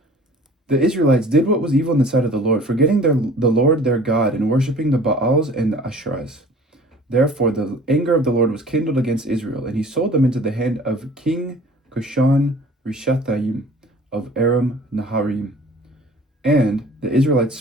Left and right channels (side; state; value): both; normal; correlation 0.48